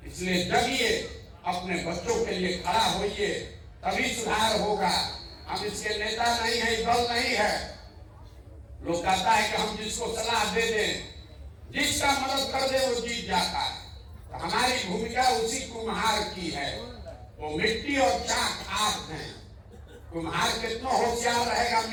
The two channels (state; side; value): identical; both; correlation 1.00